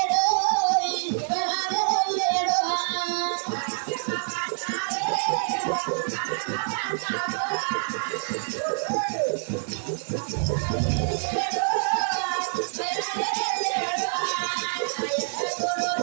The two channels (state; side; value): silent; left; digital silence